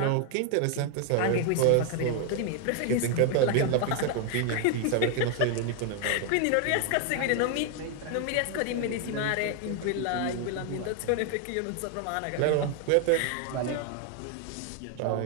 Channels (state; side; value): different; both; correlation 0.00